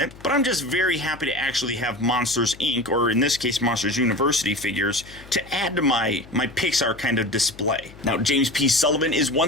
but I'm just very happy to actually have Monsters Inc., or in this case Monsters University figures, to add to my Pixar kind of display. Now, James P. Sullivan is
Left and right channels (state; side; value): noise; left; hum, 20 dB below the sound